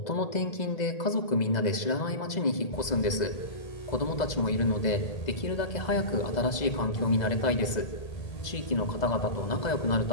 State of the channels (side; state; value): right; late; 2.0 ms